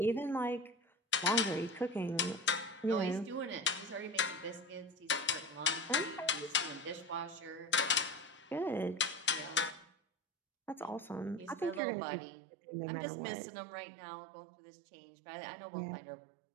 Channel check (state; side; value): drops out; left; at 11.8 s